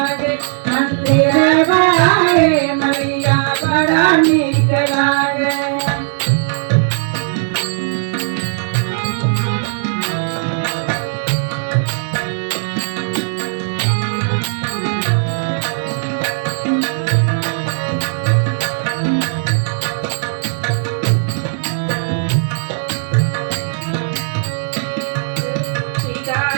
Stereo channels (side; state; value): left; silent; digital silence